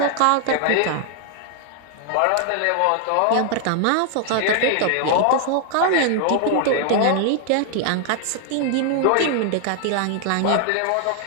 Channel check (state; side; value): different; both; correlation 0.00